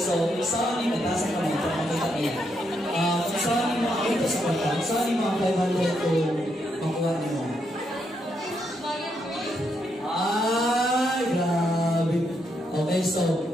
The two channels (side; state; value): both; normal; correlation 0.79